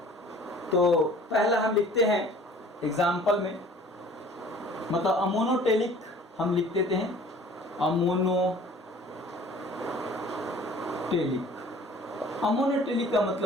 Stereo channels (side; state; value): both; normal; correlation 0.50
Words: तो पहला हम लिखते हैं एग्जाम्पल में, मतलब अमोनोटेलिक हम लिख देते हैं, अमोनोटेलिक का